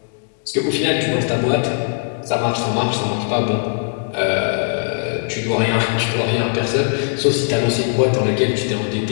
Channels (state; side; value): silent; right; 66 dB below the other